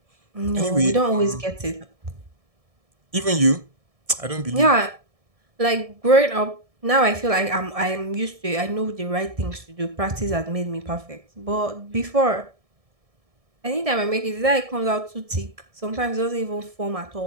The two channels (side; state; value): left; late; 1.7 ms